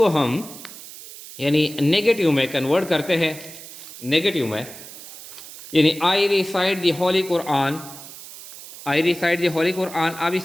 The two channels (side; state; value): right; noise; hiss, 15 dB below the sound